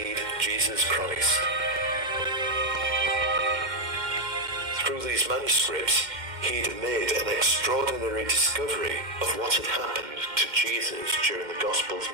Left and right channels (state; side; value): late; left; 2.1 ms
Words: Jesus Christ. Through these manuscripts, he'd made an extraordinary discovery of what had happened to Jesus during the Gospel's